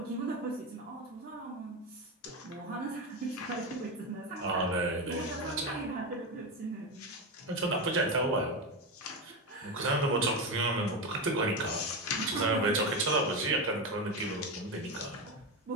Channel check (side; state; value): both; normal; correlation 0.15